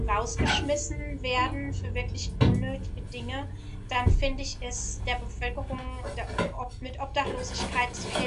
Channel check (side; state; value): both; identical; correlation 1.00